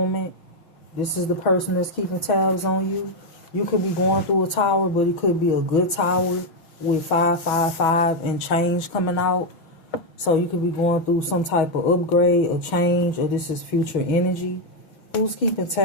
This is the person that's keeping tabs on you. You could be going through a tower, but it could be a good tower with 555 and change coming out. So you could be going through some type of upgrade or change, or this is future energy. Who's keeping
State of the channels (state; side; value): late; right; 6.2 ms